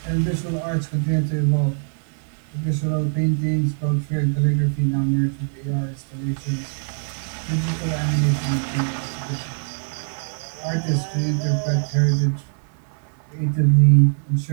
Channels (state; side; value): silent; left; digital silence